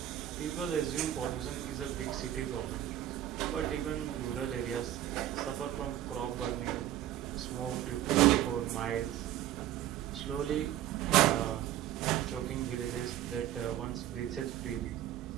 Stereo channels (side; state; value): left; quieter; 12.6 dB